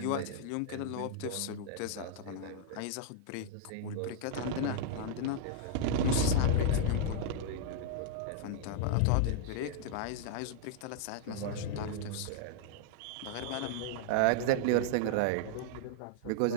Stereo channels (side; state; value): both; different; correlation -0.01